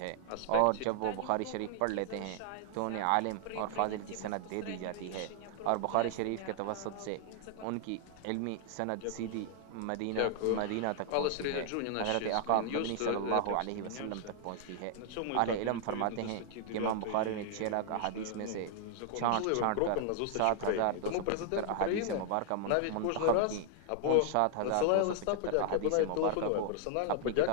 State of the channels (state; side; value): different; both; correlation 0.00